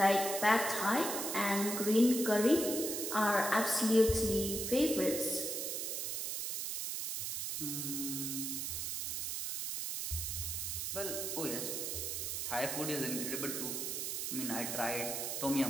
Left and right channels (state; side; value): noise; right; hiss, 2 dB below the sound